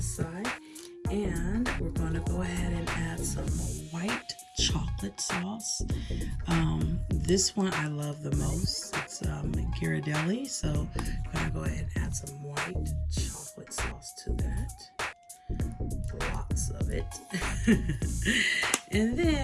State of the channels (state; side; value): identical; both; correlation 1.00